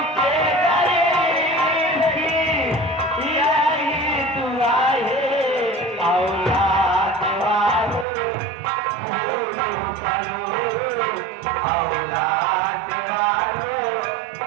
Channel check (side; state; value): left; drops out; at 8.1 s